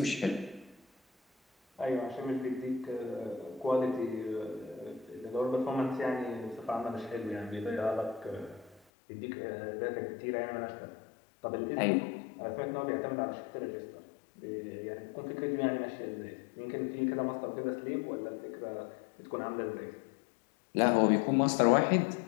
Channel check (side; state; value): right; drops out; at 8.8 s